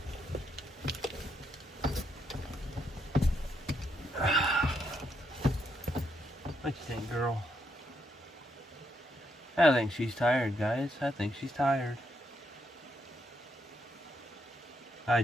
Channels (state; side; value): normal; both; correlation 0.78